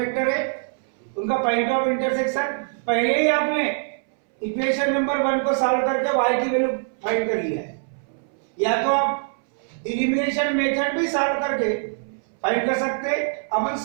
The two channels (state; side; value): silent; left; 63 dB below the other